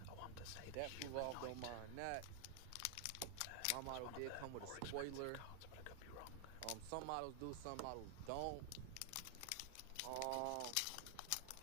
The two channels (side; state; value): both; different; correlation 0.00